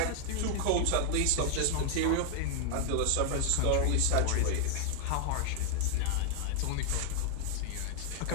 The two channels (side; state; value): both; different; correlation 0.00